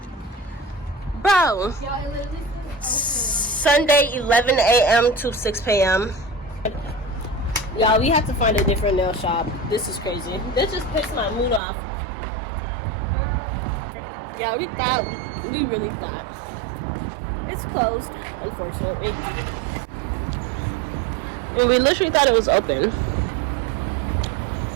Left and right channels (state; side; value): drops out; left; at 11.6 s